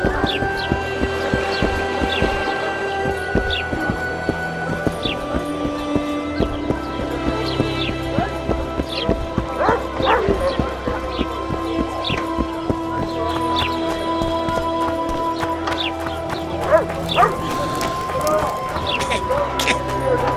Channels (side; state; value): both; identical; correlation 1.00